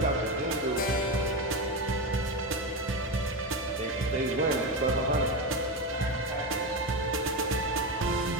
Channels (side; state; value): both; normal; correlation 0.16